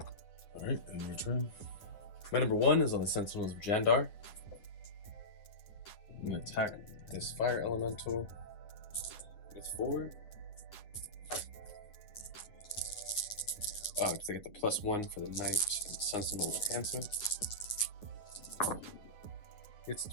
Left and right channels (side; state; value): right; late; 9.6 ms